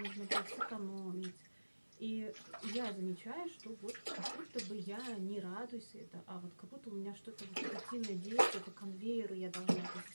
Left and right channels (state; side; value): inverted; both; correlation -1.00